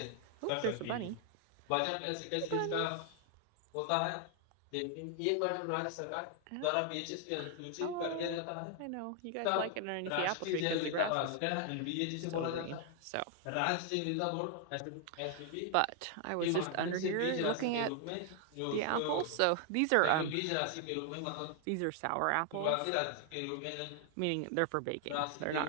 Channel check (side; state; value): both; different; correlation 0.00